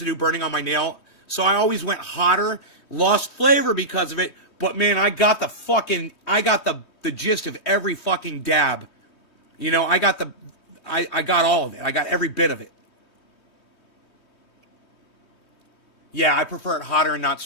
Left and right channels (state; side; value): late; right; 3.2 ms